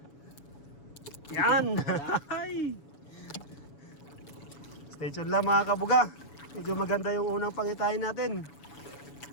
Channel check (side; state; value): right; late; 7.0 ms